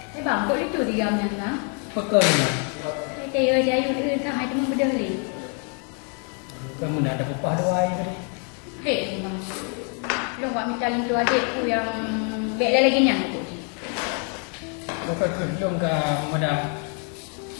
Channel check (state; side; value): quieter; right; 39.7 dB